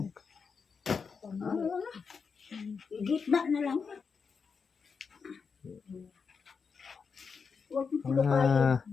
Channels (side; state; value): right; quieter; 5.6 dB